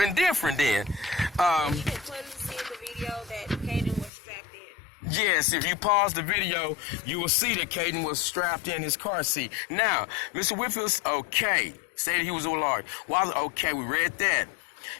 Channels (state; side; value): drops out; right; at 4.1 s